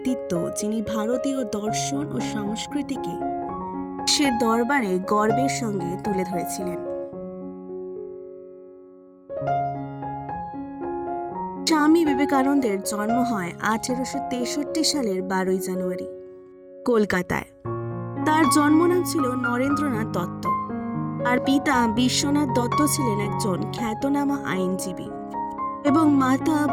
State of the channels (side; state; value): both; identical; correlation 1.00